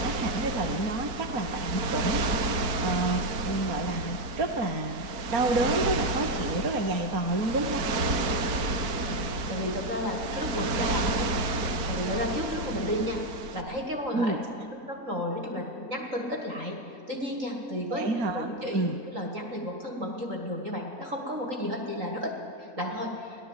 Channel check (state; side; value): late; left; 4.4 ms